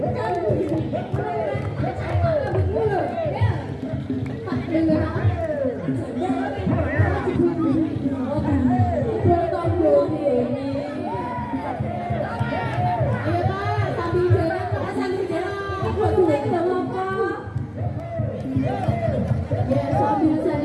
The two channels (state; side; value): identical; both; correlation 1.00